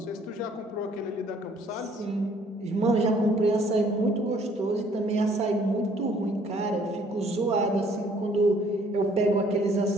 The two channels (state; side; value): normal; both; correlation 0.60